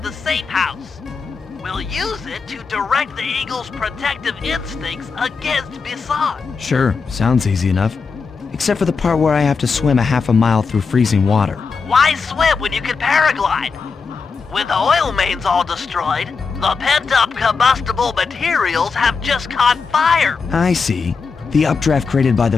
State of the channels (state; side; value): quieter; right; 5.0 dB